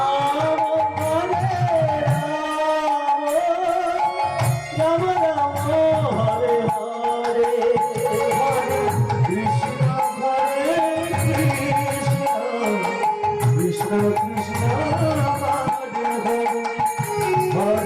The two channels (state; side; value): identical; both; correlation 1.00